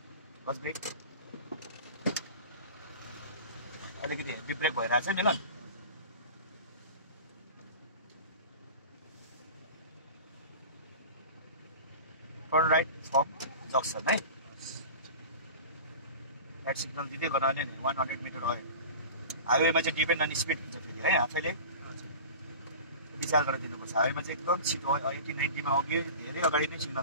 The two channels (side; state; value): both; inverted; correlation -0.34